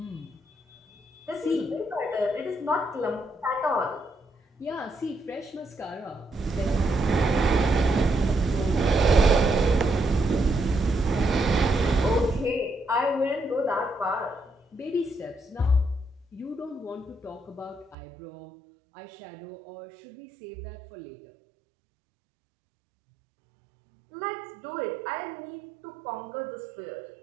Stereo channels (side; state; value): left; drops out; at 17.9 s